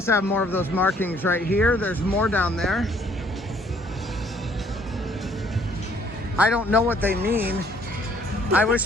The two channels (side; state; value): both; normal; correlation 0.62